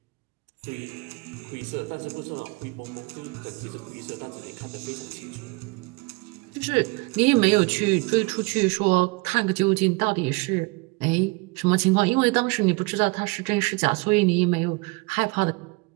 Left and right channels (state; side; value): quieter; left; 27.1 dB